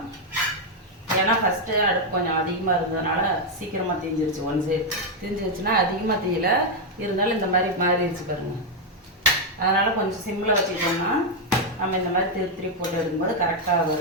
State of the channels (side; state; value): both; normal; correlation 0.02